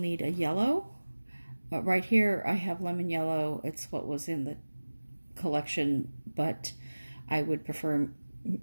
a yellow. Right here I have lemon yellow. It's what was in the collection, but I would prefer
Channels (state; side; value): inverted; both; correlation -1.00